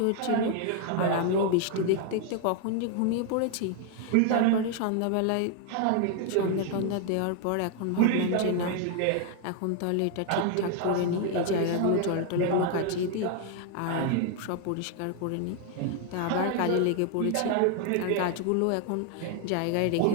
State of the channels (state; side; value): different; both; correlation 0.00